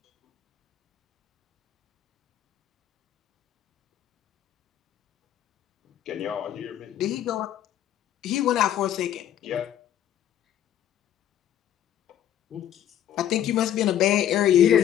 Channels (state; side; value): quieter; right; 10.9 dB